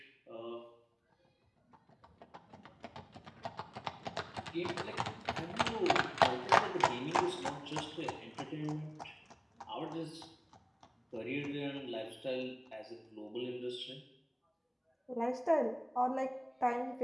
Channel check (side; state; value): both; identical; correlation 1.00